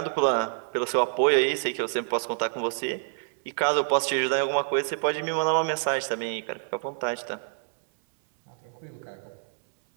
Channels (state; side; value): silent; left; 60 dB below the other